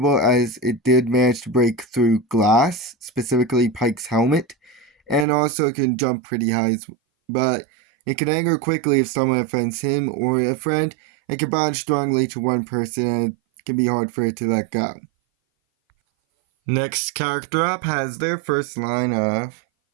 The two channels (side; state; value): left; drops out; at 5.2 s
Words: as it did manage to break through glass, specifically Pike's helmet, and also can jump pretty high, but it can anger quickly if someone offends him or a friend, and can bond strongly to one person, and it can be hard for it to let go. Next character up has their first line of...